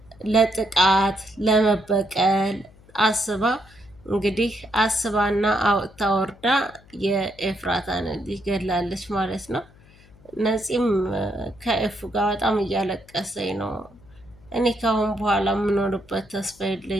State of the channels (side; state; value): left; noise; hum, 26 dB below the sound